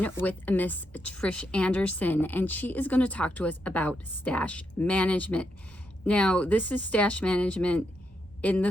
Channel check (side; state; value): right; noise; rumble, 28 dB below the sound